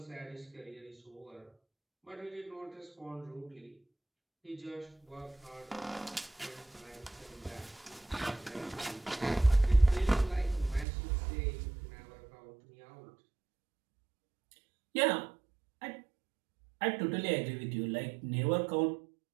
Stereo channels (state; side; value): drops out; left; at 10.9 s